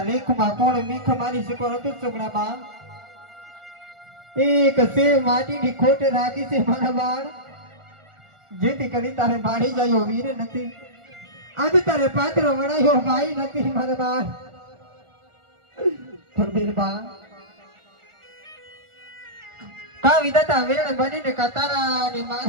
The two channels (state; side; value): late; left; 1.4 ms